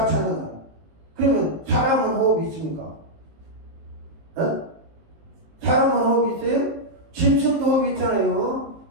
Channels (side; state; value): left; late; 19 ms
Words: 찬양하라. 그러면 사람은 호흡이 있습니까? 사람은 호흡이 있어요? 짐승도 호흡이 있잖아요.